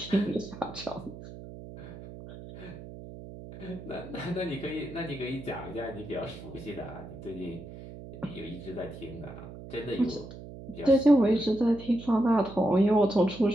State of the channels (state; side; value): noise; right; hum, 13 dB below the sound